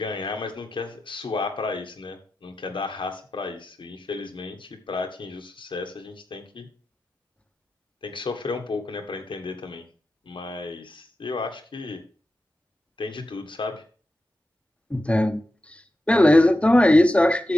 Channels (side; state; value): both; normal; correlation 0.90